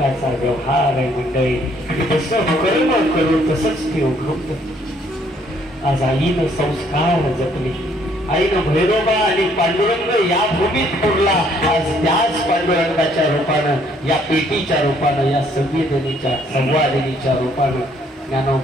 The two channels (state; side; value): normal; both; correlation 0.65